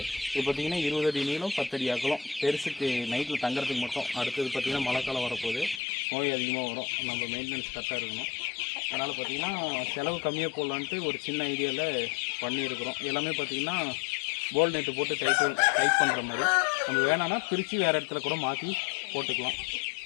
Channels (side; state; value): right; drops out; at 5.8 s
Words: இது பார்த்திங்கன்னா 20 அடி நீளம், 10 அடி அகலம். பெருசுக்கு நைட்டில் தங்குறதுக்கு மட்டும். அடுத்தது பார்த்திங்கன்னா மழை காலம் வரப்போகுது, நோய் அதிகமாக வரும். நம்ம மெயின்டெனன்ஸ் கரெக்டாக இருக்கணும். அதனால் பார்த்திங்கன்னா செலவு கம்மியாக போடலான்ட்டு ஒரு சின்ன ஐடியாவில் பண்ணியிருக்கிறோம். எல்லாமே பார்த்திங்கன்னா போல் நெட்டு போட்டு டைட் பண்ணுற மாதிரி. நம்ம வேணான்னா பிரித்து வேறு இடத்துல கூட மாற்றி போட்டுக்கலாம்.